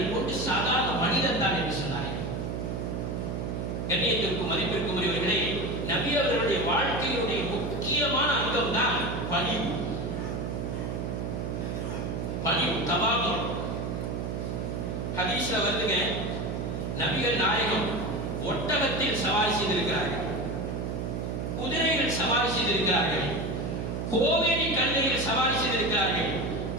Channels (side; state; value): right; noise; hum, 3 dB below the sound